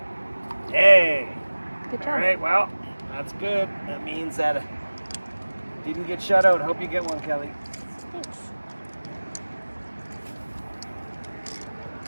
Yay! Good job. All right, well, that's good. That means that it didn't get shut out. Hope you get one, Kelly. Thanks.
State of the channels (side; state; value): both; inverted; correlation -1.00